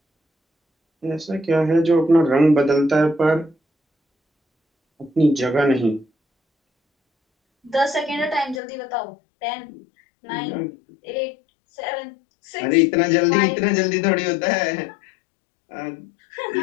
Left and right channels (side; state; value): right; drops out; at 8.6 s